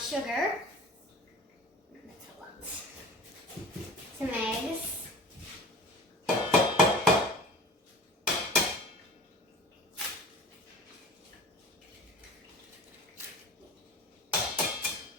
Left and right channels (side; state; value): both; normal; correlation 0.39